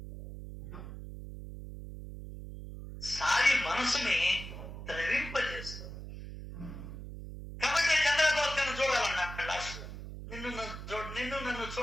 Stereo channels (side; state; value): right; noise; hum, 10 dB below the sound